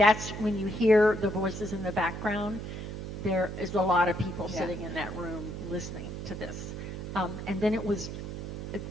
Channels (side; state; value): right; noise; hum, 7 dB below the sound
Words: when you hear the voices in the background, there is a lot of people sitting in that room listening to this. And then it was